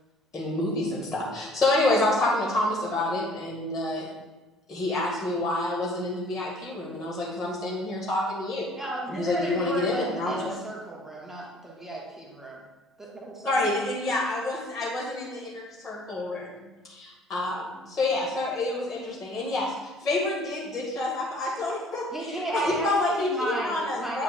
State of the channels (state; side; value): normal; both; correlation 0.54